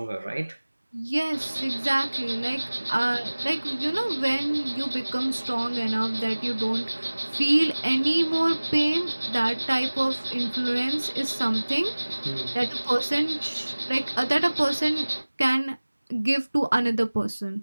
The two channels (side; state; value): both; inverted; correlation -1.00